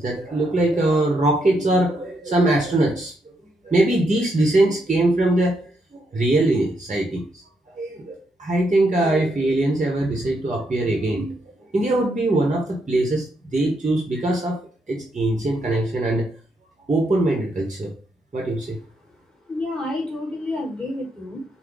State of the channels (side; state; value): both; normal; correlation 0.78